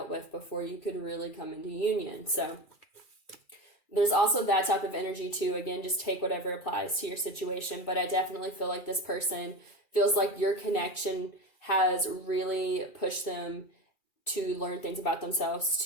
with before you could really come into union. So there's also that type of energy too. Again, just take whatever applies to your situation. But I definitely feel like this person feels like your connection has really pushed them to learn things about themselves,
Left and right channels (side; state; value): right; late; 2.4 ms